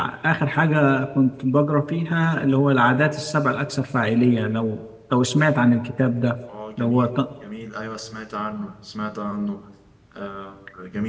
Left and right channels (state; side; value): identical; both; correlation 1.00